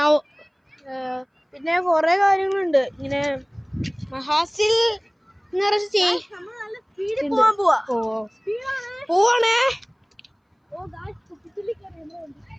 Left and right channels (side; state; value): both; identical; correlation 1.00